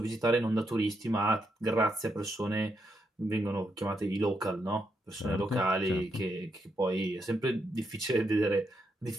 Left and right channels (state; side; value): normal; both; correlation 0.80